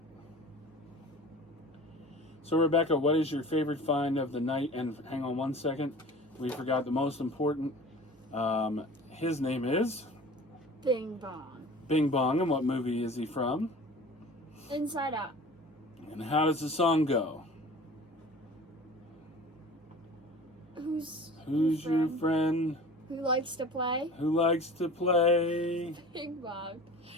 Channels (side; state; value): both; normal; correlation 0.41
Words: So, Rebecca, what is your favorite find of the night? And hang on one second. We forgot the most important. His name is Bing Bong. Bing Bong. And what movie is he from? Inside Out. And how does the song go? Who's your friend? Who likes to play? Who likes to play? Bing Bong.